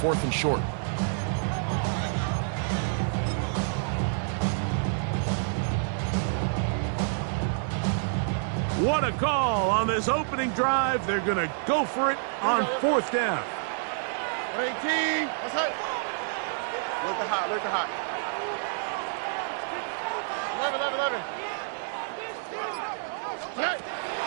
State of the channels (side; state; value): left; silent; digital silence